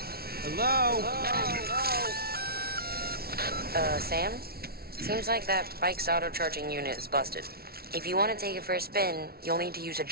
Hello? Sam? Seems like that bike's auto-charging unit is busted. If you want to take it for a spin, you'll need to use a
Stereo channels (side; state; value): left; late; 0.44 ms